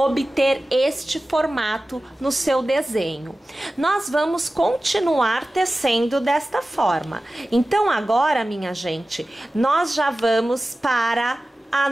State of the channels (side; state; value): both; normal; correlation 0.96